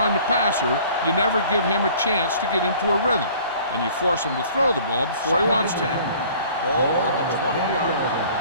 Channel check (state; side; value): inverted; both; correlation -0.50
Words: the passer, you never give him a chance to get into a rhythm, and you force him to throw the ball before he wants to. Ball on the 20-yard line.